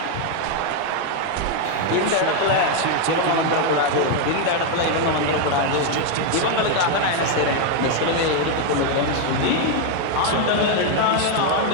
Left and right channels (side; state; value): both; different; correlation 0.01